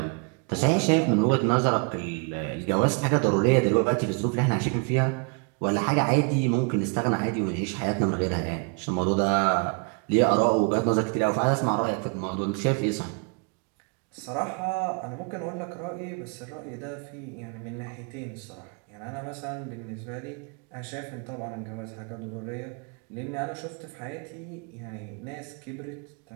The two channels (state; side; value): quieter; left; 34.0 dB